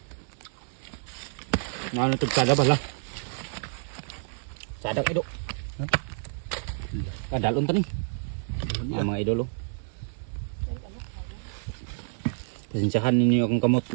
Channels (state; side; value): silent; left; digital silence